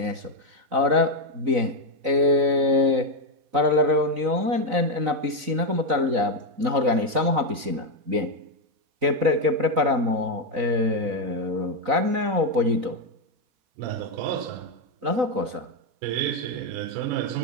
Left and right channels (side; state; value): left; late; 3.9 ms